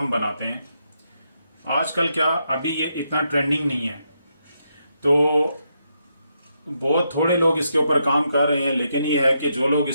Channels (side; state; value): both; inverted; correlation -0.81